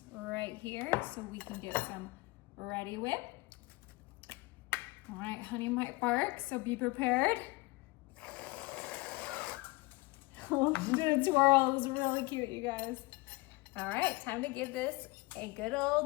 right here so we can get some ready whip. All right, honey might bark, so be prepared. Oh, she did a twirl. It was really cute, you guys. All right, time to give this a good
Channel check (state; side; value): quieter; right; 23.5 dB